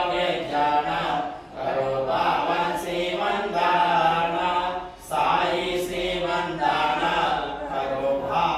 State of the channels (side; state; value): both; identical; correlation 1.00